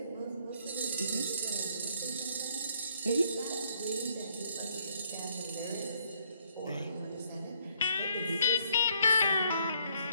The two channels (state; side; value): inverted; both; correlation -0.67